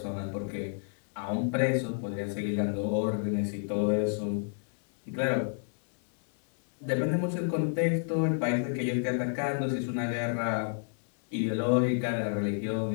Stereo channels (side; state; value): right; silent; digital silence